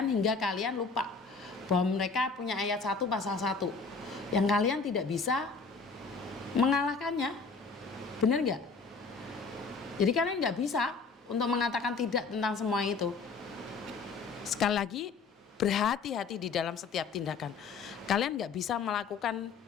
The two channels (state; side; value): quieter; right; 4.7 dB